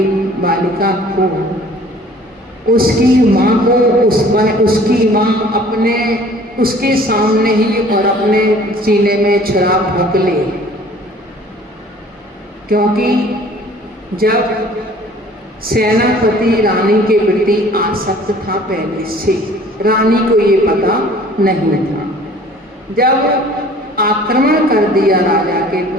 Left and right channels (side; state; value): both; normal; correlation 0.51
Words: बालिका को उसकी माँ को उसकी माँ अपने उसके सामने ही और अपने सीने में छुरा भोंक ले, क्योंकि जब सेनापति रानी के प्रति आसक्त था पहले से, रानी को ये पता नहीं था। जब आक्रमण कर दिया राजा के